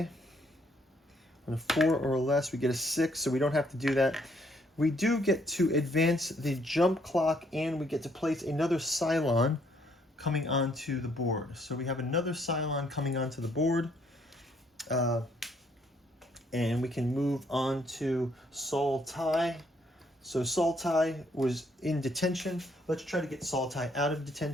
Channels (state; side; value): normal; both; correlation 0.68